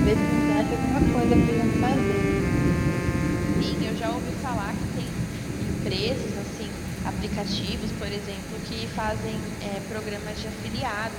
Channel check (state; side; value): identical; both; correlation 1.00